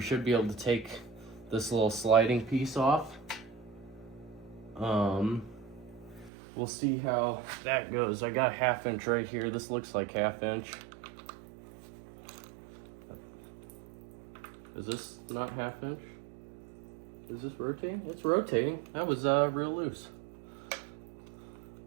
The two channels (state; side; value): drops out; left; at 6.3 s